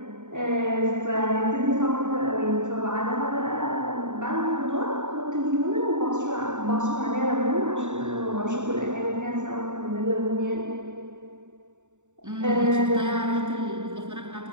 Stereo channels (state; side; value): late; left; 0.84 ms